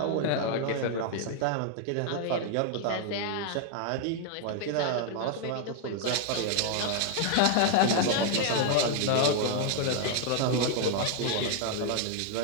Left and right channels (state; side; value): different; both; correlation 0.00